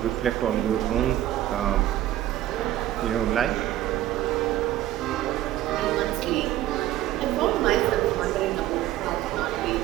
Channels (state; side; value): quieter; left; 13.7 dB